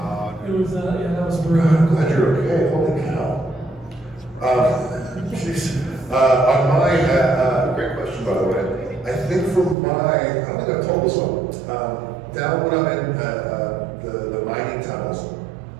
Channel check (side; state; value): left; drops out; at 9.8 s